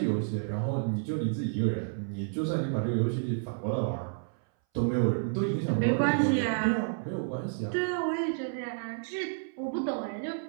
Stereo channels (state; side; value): silent; left; 58 dB below the other